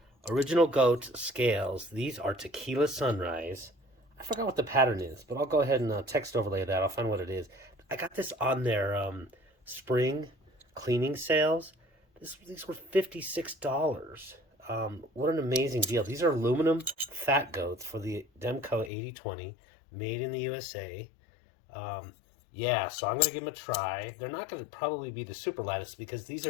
Original Goat scales. These are Tequila Sunrise. I forgot what the pattern is, but I'll go ahead and text overlay that. I'll find what it is. I got this on their spring cleaning sales. These were $56. What an amazing deal. These are aluminum Phat goats for the Demko 80-20, made in the USA. Yeah, so I'm going to give them a try. They're not going to probably be the super lightest because these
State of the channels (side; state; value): right; drops out; at 18.9 s